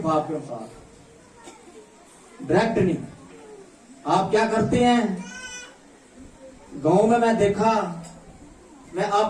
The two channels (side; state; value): both; identical; correlation 1.00